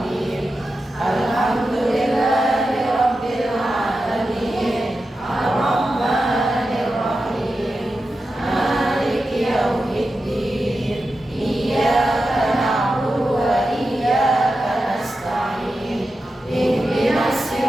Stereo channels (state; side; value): normal; both; correlation 0.91